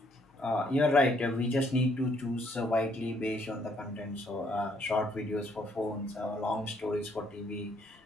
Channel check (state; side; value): normal; both; correlation 0.69